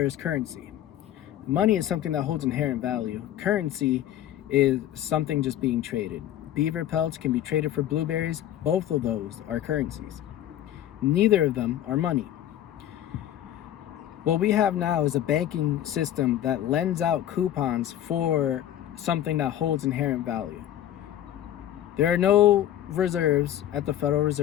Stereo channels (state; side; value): quieter; right; 11.8 dB